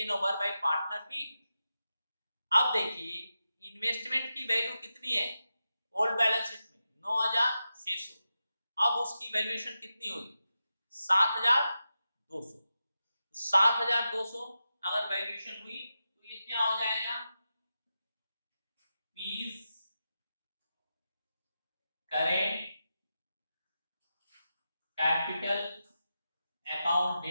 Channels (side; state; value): both; inverted; correlation -0.90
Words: over by partner B. अब देखिए इन्वेस्टमेंट की वैल्यू कितनी है ओल्ड बैलेंस शीट में 9600। अब उसकी वैल्यूएशन कितनी होगी 7200। 7200 अगर वैल्यूएशन हुई तो ये क्या हो जाएगा P's current capital account